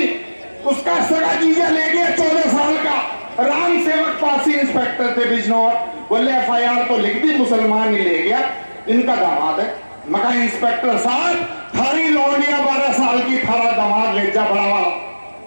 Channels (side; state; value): both; inverted; correlation -1.00